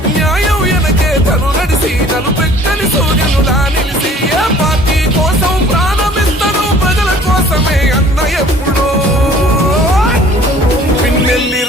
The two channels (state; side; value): normal; both; correlation 0.52